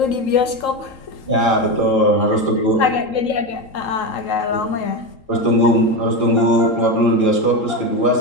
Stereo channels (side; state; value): right; late; 3.8 ms